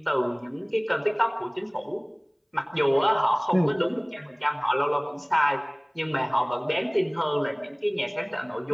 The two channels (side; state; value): both; identical; correlation 1.00